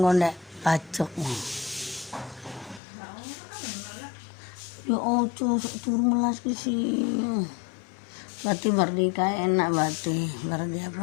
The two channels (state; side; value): drops out; right; at 2.8 s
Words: ngondek pacok. Ya turun melas ke sini. Berarti merdeka enak berarti. Berarti